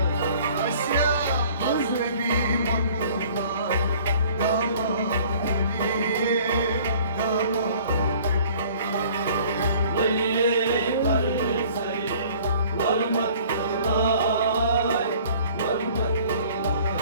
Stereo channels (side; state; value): both; inverted; correlation -0.53